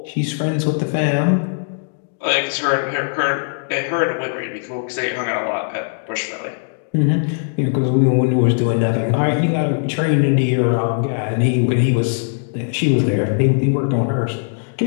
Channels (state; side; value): silent; right; digital silence